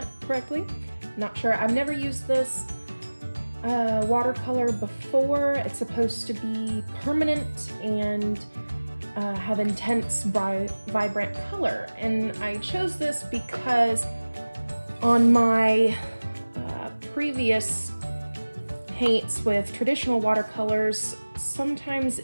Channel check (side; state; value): both; inverted; correlation -1.00